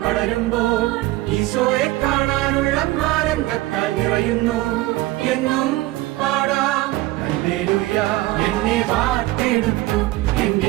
ഈശോയെ കാണാനുള്ള ആനന്ദത്താൽ നിറയുന്നു. എന്നും പാടാം ഹല്ലേലൂയ. എന്നെ വാർത്തെടുത്തു,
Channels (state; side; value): quieter; left; 18.0 dB